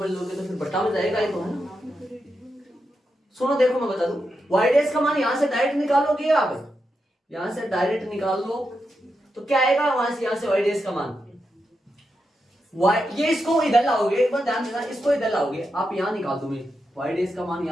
लोगे तो फिर बटा में जाएगा ये तो, है ना। सुनो देखो मैं बता दूं, y डेस का मान यहां से डायरेक्ट निकालोगे आप, यहां से डायरेक्ट निकाल लो तो क्या आएगा, वहां से यहां से y डेस का मान y, ये इसको इधर लाओगे, एक बार ध्यान देना, इसको इधर लाओगे आप, यहां निकाल दो, मैं y डेस का मान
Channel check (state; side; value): normal; both; correlation 0.86